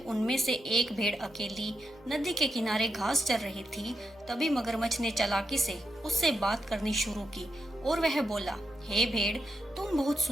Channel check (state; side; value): normal; both; correlation 0.85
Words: उनमें से एक भेड़ अकेली नदी के किनारे घास चर रही थी, तभी मगरमच्छ ने चालाकी से उससे बात करनी शुरू की और वह बोला, हे भेड़, तुम बहुत